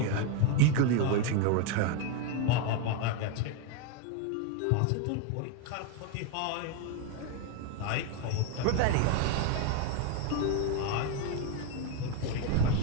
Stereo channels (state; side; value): different; both; correlation 0.01